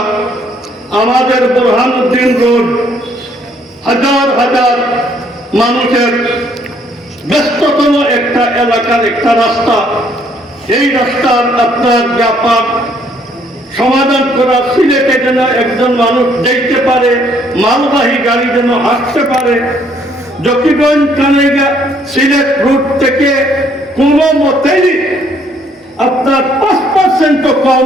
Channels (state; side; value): normal; both; correlation 0.66